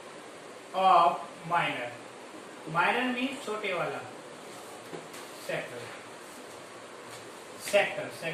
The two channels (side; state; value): both; identical; correlation 1.00